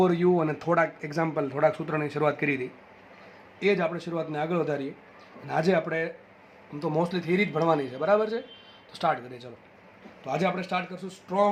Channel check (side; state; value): both; identical; correlation 1.00